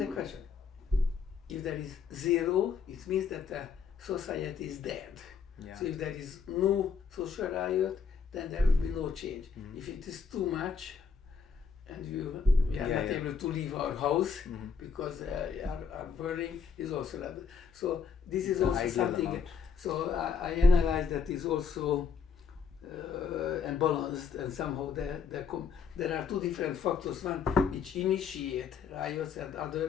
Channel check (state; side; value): quieter; right; 5.7 dB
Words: a question. If there is zero, it means that the society is dead. Yeah. So if there is no social riot, then there will be no change. If it is too much, and we are not able to leave our house because our burning is also that. So this is also something. Amount. So I analyzed that is also unbalanced, and somehow there are two different factors. One which initiate riots, and